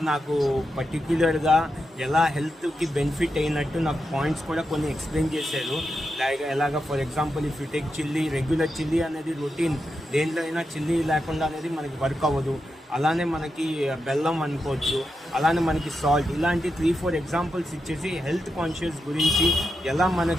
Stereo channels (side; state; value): both; normal; correlation 0.87